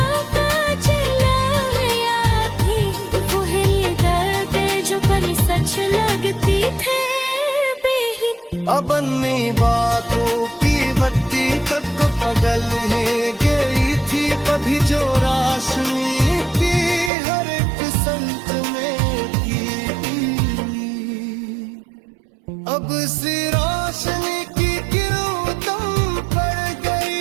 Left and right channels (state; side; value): drops out; left; at 17.1 s